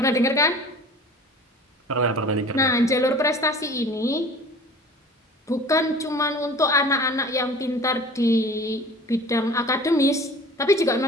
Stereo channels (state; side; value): normal; both; correlation 0.43